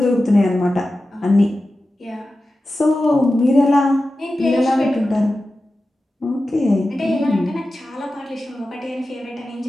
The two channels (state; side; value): normal; both; correlation 0.94